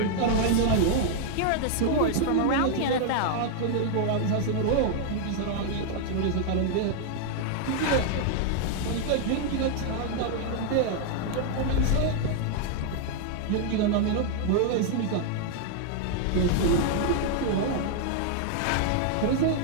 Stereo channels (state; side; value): different; both; correlation 0.00